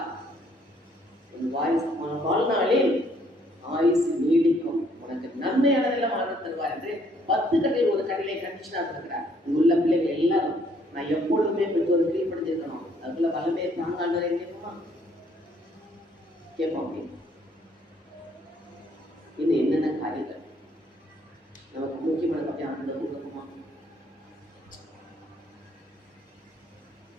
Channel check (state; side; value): normal; both; correlation 0.65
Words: உன் வாழ்நாளில் ஆயுசு நீடிக்கும், உனக்கு நன்மையானதெல்லாம் வாழ்ந்து தருவார் என்று 10 கடையில் ஒரு கடையிலே கண்டிஷனாக இருக்கிறார். உள்ள பிள்ளைகள் எல்லாரும் நான் எப்பொழுதுமே பெற்றோர் கீழ்படுத்திருக்கணும். அதுக்குள்ள வல்லமே தாங்காண்டவரை கேட்போமா? கேட்போம். இன்னும் என்னென்ன காரியங்கள் நமக்கு முக்கியமான பற்றி ஆண்டு கொடுக்குமா?